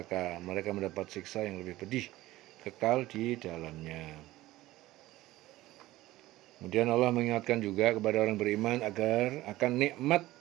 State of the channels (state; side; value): quieter; left; 16.9 dB